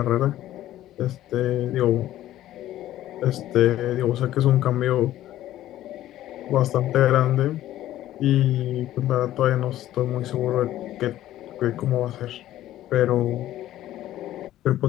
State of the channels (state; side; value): quieter; right; 13.7 dB